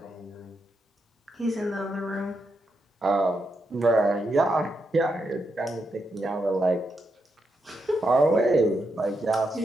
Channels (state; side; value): normal; both; correlation 0.83